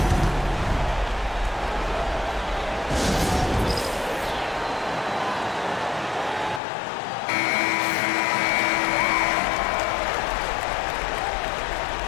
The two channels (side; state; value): right; drops out; at 6.6 s